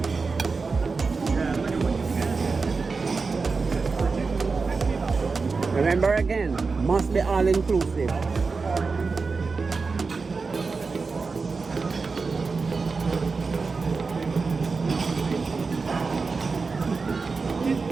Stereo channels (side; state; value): left; quieter; 4.5 dB